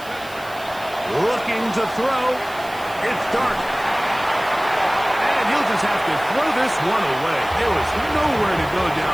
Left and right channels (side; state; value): right; noise; hiss, 20 dB below the sound